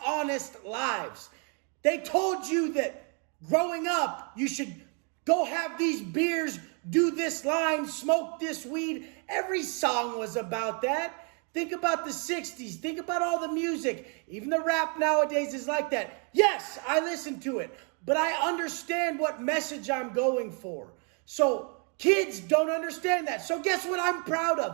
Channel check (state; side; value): quieter; left; 38.0 dB